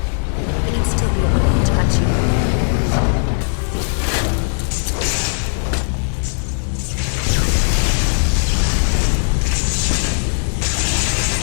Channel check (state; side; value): silent; right; digital silence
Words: But you'd still be able to touch you.